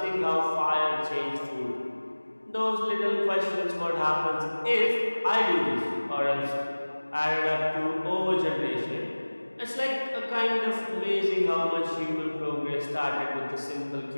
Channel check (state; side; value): inverted; both; correlation -1.00